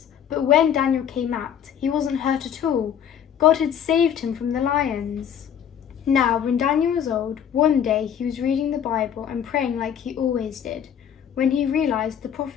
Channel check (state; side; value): quieter; right; 8.8 dB